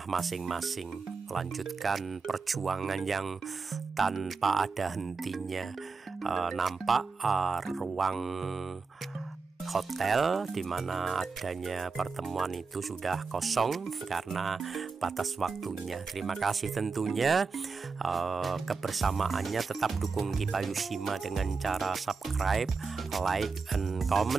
masing-masing, melanjutkan perjuangan yang tanpa ada hentinya. Nampak ruang hotel di mana adanya pertemuan itu sudah kosong karena batas waktunya. Terima kasih tentunya kebersamaannya. Tetap dukung Kipayushima dengan cara subscribe, like, and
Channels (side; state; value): left; quieter; 4.7 dB